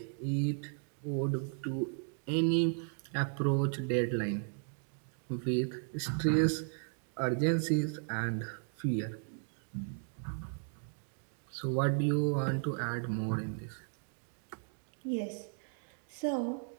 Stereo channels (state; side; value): silent; left; 54 dB below the other